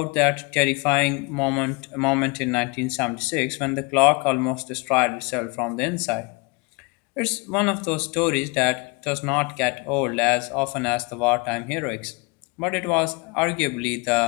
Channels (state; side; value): quieter; right; 29.3 dB